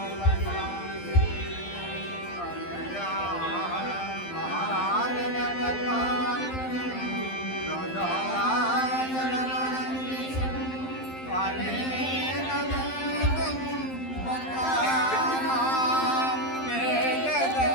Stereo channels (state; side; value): late; right; 11 ms